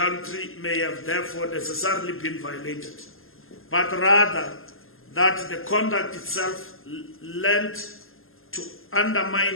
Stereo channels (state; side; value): late; right; 0.60 ms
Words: may have therefore necessarily been violated, but rather that the conduct itself lent to